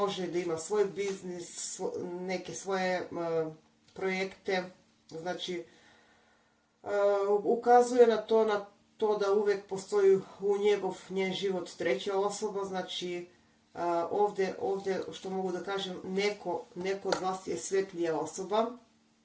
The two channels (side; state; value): both; identical; correlation 1.00